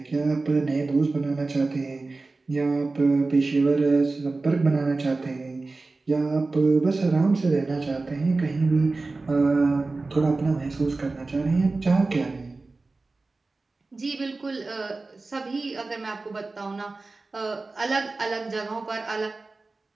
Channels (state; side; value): quieter; left; 3.5 dB